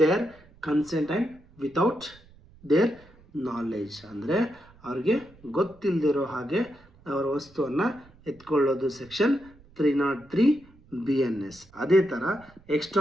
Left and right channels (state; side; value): noise; right; rumble, 26 dB below the sound